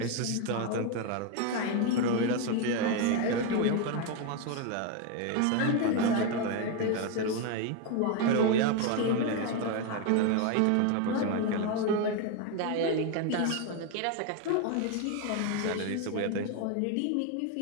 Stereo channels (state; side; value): different; both; correlation 0.02